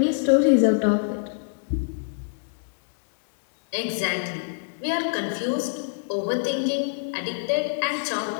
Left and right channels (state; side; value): silent; right; digital silence